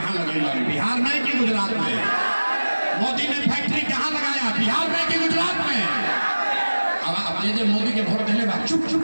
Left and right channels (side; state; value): both; inverted; correlation -1.00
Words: लगेगा, बिहार में कि गुजरात में? मोदी ने फैक्ट्री कहाँ लगाया, बिहार में कि गुजरात में? अब ये मोदी के वोट देने बाद चुप